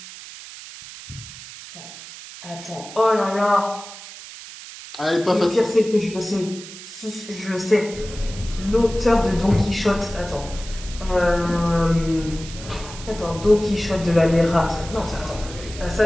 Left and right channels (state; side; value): noise; right; hiss, 14 dB below the sound